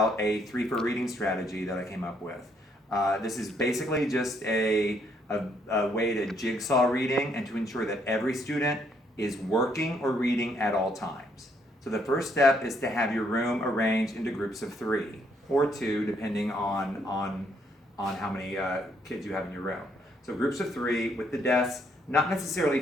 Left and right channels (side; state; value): both; normal; correlation 0.70